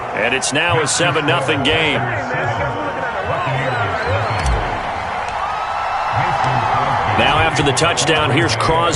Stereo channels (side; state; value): both; identical; correlation 1.00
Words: and it's now a 7-0 game. Now after the touchdown, here's